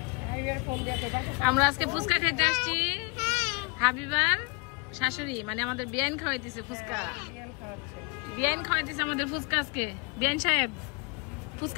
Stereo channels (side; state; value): right; quieter; 28.9 dB